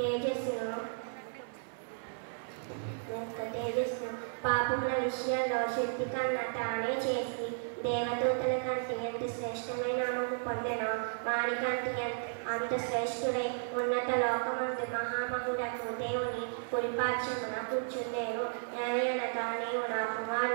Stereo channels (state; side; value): silent; left; 55 dB below the other